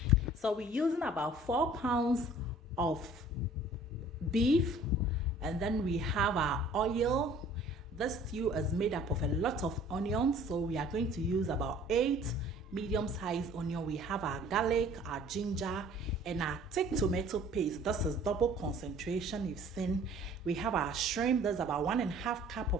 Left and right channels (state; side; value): normal; both; correlation 0.51